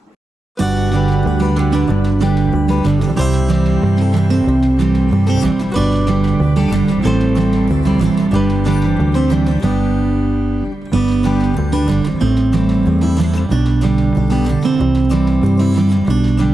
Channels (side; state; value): both; normal; correlation 0.91